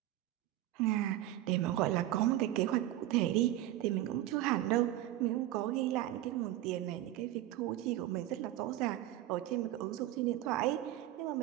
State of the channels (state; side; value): quieter; left; 14.2 dB